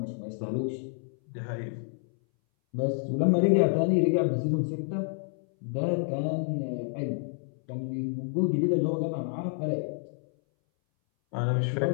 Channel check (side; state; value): right; silent; 59 dB below the other